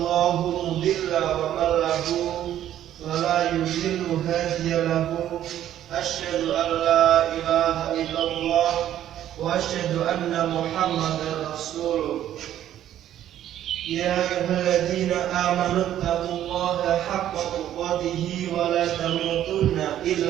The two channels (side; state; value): left; quieter; 11.6 dB